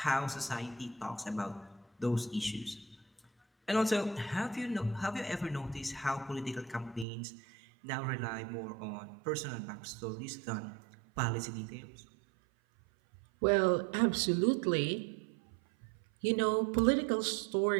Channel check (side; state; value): left; drops out; at 7.1 s